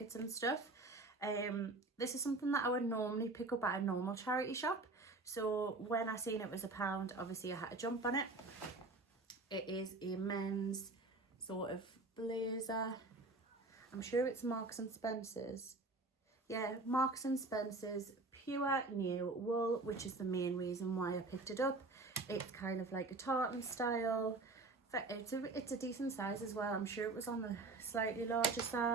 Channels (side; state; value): left; quieter; 3.4 dB